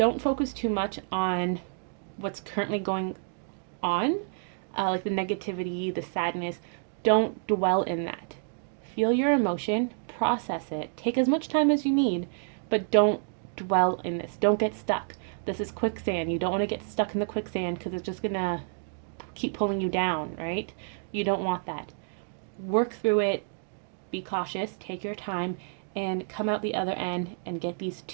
focus too much on what's currently going on, like the negativity, the sadness. Don't dwell in that. Feel your emotion, process it, take as much time as you need, but don't dwell in this. Don't get stuck. This is quicksand. You don't want to get stuck in the quicksand because it's just gonna keep pulling you down, right? You don't want that. Work through it, be cautious, take your time, and come out the other end and get these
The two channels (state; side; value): silent; left; digital silence